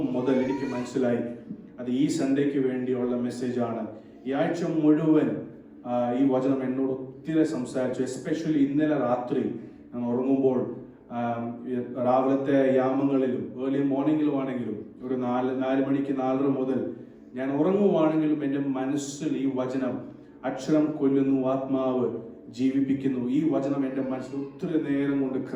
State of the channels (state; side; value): identical; both; correlation 1.00